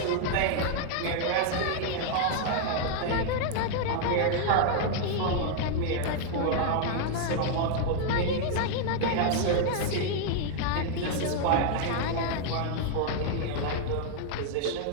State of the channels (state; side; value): different; both; correlation 0.00